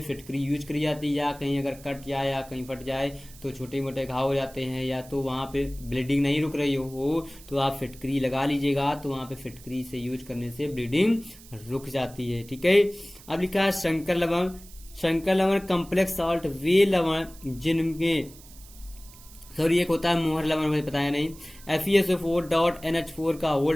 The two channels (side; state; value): right; noise; hiss, 21 dB below the sound